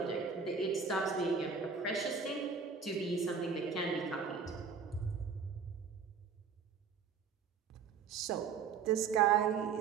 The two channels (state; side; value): quieter; left; 5.9 dB